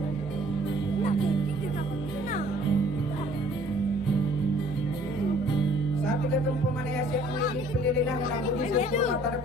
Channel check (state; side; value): normal; both; correlation 0.57